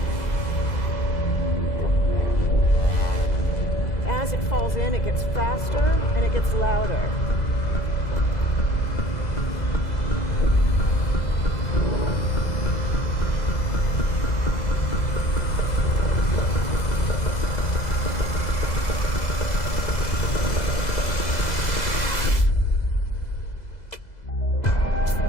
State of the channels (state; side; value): late; right; 2.0 ms